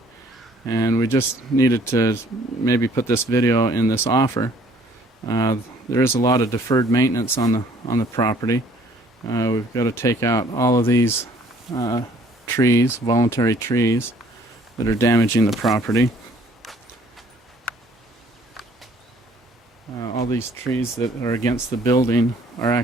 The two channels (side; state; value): both; normal; correlation 0.59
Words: and we just needed to maybe put this video in this offer. There is a lot of deferred maintenance on the property. We've got to take out all of these trees, voluntary trees, that are damaging the property. All these trees that are against the building are